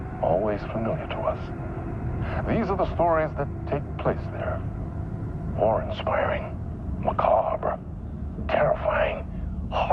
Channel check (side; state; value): both; identical; correlation 1.00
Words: always familiar to us. These are the stories that take place there. Awe-inspiring, macabre, terrifying,